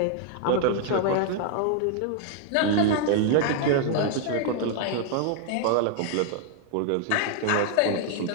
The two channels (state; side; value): different; both; correlation 0.00